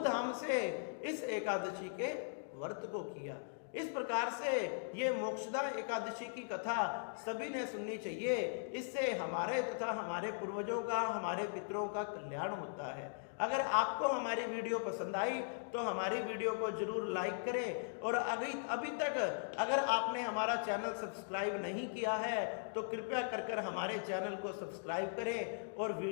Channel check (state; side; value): silent; right; digital silence